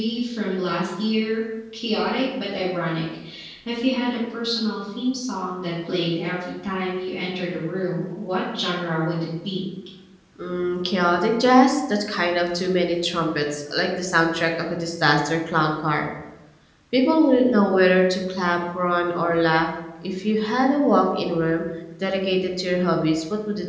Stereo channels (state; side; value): identical; both; correlation 1.00